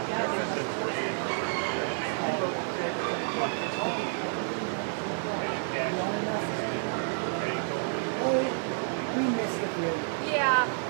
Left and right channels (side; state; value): left; silent; 58 dB below the other